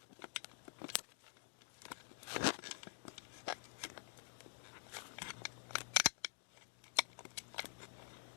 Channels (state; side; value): silent; right; digital silence